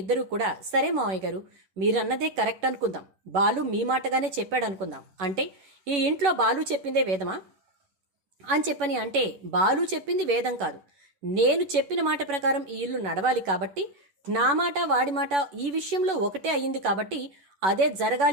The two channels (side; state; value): left; late; 11 ms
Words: ఇద్దరూ కూడా, సరే మావయ్య గారు మీరన్నదే కరెక్ట్ అనుకుందాం, బాలు మీ మాటగానే చెప్పాడు అనుకుందాం, అంటే ఈ ఇంట్లో బాలు చెప్పిందే వేదమా అని చెప్పని అంటే, బాలు చెప్పింది వేదం కాదు, నేను చెప్పిన మాట ప్రకారం ఈ ఇల్లు నడవాలి కాబట్టి, నా మాట వాడి మాట ఈ విషయంలో ఒకటే అయ్యింది కాబట్టి అదే